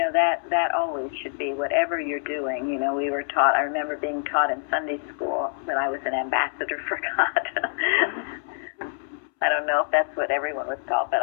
That always should be whatever you're doing. We were taught, I remember being taught in Sunday school that I was an ambassador for God. I don't know if that's what everyone was taught, but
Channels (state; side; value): silent; right; 61 dB below the other